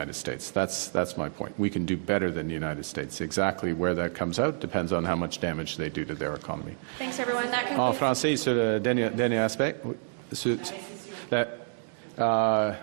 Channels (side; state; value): left; silent; 59 dB below the other